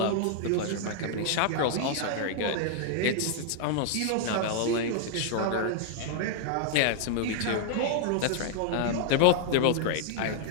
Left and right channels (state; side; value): different; both; correlation -0.01